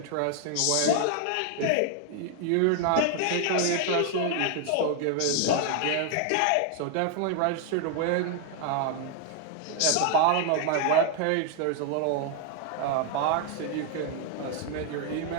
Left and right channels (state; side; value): different; both; correlation 0.00